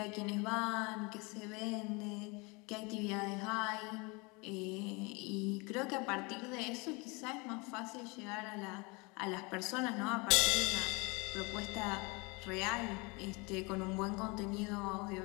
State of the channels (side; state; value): right; quieter; 28.3 dB